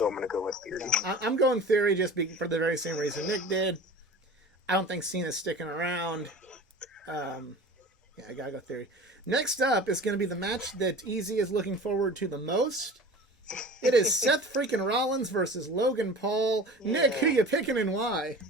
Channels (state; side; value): normal; both; correlation 0.39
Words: I'm going to go with Theory. I'm going Theory just for the very same reason Nick did. I don't think Cena's sticking around. Yeah, I gotta go Theory. Next up is going to be the match that Easy is looking forward to the most. It is Seth freaking Rollins versus Logan Paul. Yeah. Nick, who you picking and why?